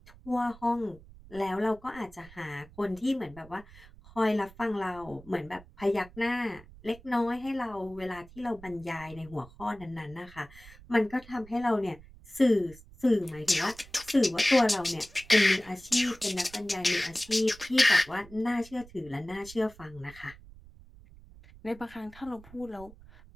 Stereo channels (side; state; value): right; noise; rumble, 21 dB below the sound